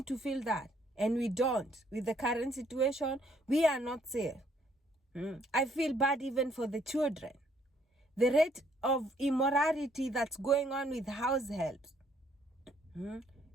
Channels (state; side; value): normal; both; correlation 0.67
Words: to feel that. And we don't. With the current situation, we are not safe. I feel bad even for the children. The rate of immorality that's going on with house helps.